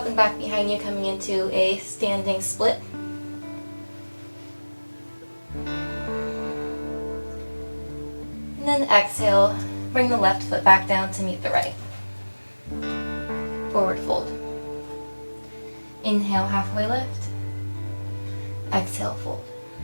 and back behind you, coming into a standing split. And then exhale, bring the left foot back down to meet the right. Forward fold. Inhale, halfway lift. Exhale, fold.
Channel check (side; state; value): both; inverted; correlation -1.00